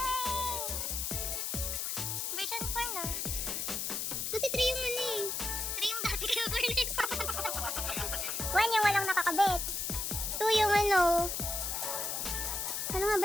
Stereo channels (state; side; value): noise; left; hiss, 1 dB below the sound